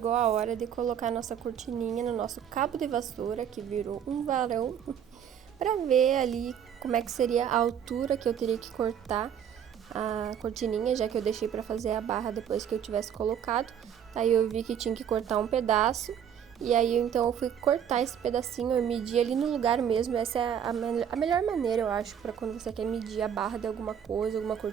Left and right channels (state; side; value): quieter; left; 8.8 dB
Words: a hora de colocar nossa cortininha no nosso cabo de vassoura, que virou um varão, para ver ali como é que seria a altura que eu teria que cortar a cortininha, já que eu deixei para fazer a barra depois que eu tivesse colocado. Aí eu vi que tinha que cortar um pedaço, e aí então eu fui cortar esse pedacinho, eu medi ali no lugar mesmo. Essa é a melhor maneira, eu acho, para quando você quer medir a barra de alguma coisa, alguma